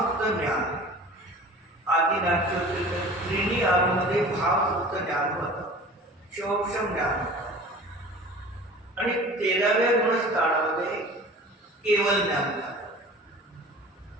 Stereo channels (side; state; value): both; normal; correlation 0.41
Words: ज्ञान आधी नाट्य होते तर त्रिणी आरूमध्ये भावसुद्ध ज्ञान होतं, शोक्षम ज्ञान होतं आणि 13व्या गुणस्थानामध्ये केवळ ज्ञान झालं.